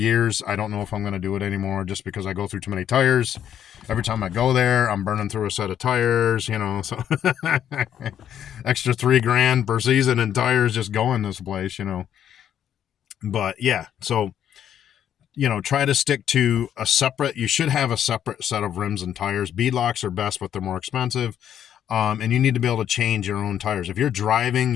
I don't know if I'm going to do it anymore just because I go through too many tires. Every time I go there, I'm burning through a set of tires, so extra $3,000 per season in tires just going this place, But yeah, so try to stick to you should have a separate set of rims and tires. Beadlocks are best, but they're more expensive. And you need to be able to change your own tires. If you're driving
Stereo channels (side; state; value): right; quieter; 9.8 dB